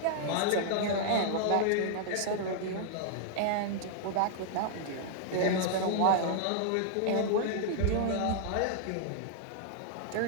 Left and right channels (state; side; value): different; both; correlation -0.01